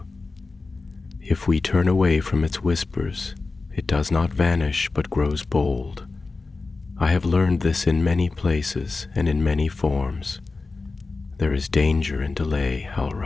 If we turn away from its whispers, it does not vanish but grows bold. I have learned this in many places and in many forms. There is danger in delay,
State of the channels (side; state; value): right; quieter; 3.8 dB